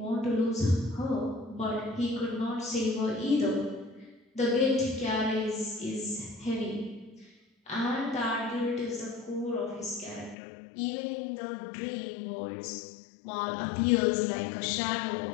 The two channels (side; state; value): right; drops out; at 10.4 s